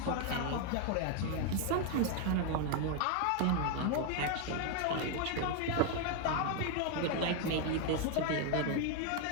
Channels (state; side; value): different; both; correlation 0.01